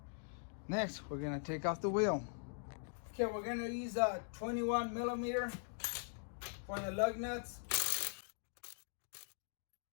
Next, we're gonna take off the wheel. Okay, we're gonna use a 21 millimeter for the lug nuts.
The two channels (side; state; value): right; silent; digital silence